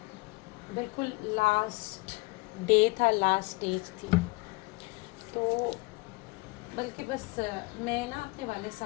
बिल्कुल लास्ट डे था, लास्ट स्टेज थी, तो बल्कि बस मैं ना अपने वाले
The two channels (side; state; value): right; quieter; 26.5 dB